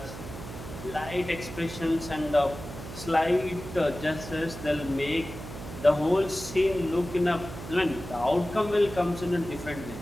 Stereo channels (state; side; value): noise; right; hum, 11 dB below the sound